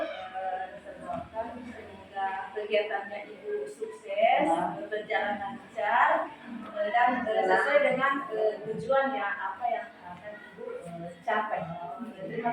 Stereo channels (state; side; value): identical; both; correlation 1.00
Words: semoga kegiatannya Ibu sukses, berjalan lancar, dan sesuai dengan tujuannya apa yang akan Ibu capai. Terima